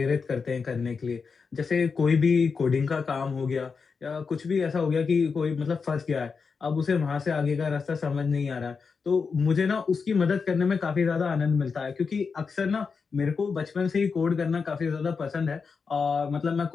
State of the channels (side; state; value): right; quieter; 5.3 dB